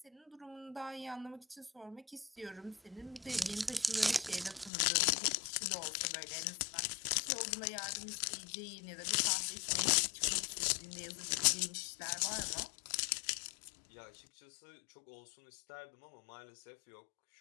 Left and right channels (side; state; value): right; drops out; at 4.7 s